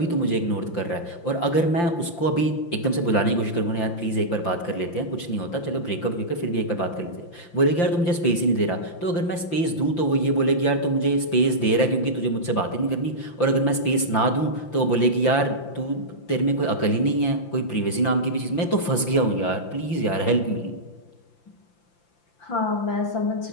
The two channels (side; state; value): right; late; 5.8 ms